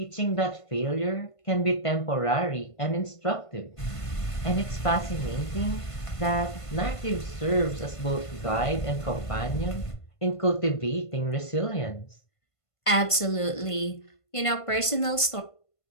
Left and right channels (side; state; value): right; late; 1.5 ms